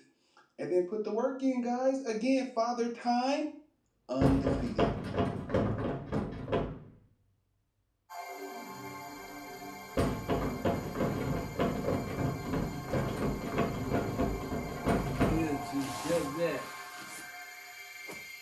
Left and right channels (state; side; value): identical; both; correlation 1.00